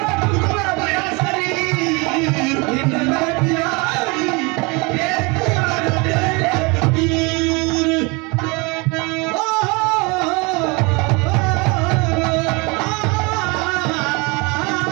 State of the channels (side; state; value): left; quieter; 28.0 dB